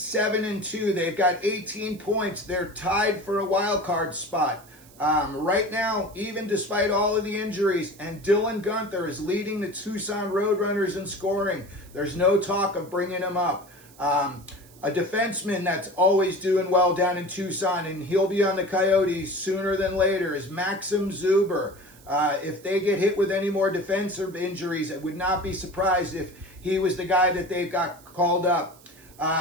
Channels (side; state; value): right; noise; hiss, 25 dB below the sound